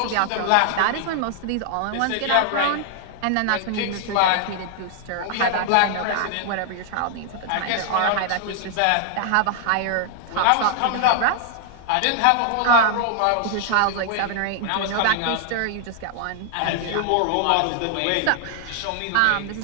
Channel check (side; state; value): both; different; correlation 0.00